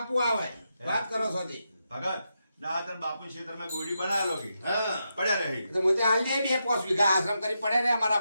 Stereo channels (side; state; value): both; inverted; correlation -0.85